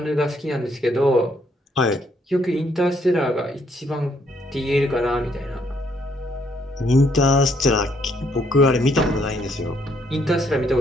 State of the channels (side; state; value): both; normal; correlation 0.70